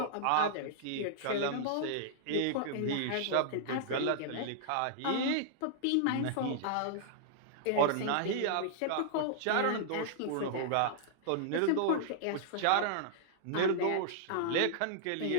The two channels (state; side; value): different; both; correlation -0.01